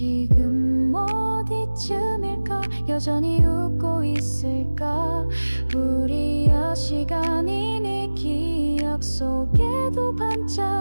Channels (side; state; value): both; inverted; correlation -1.00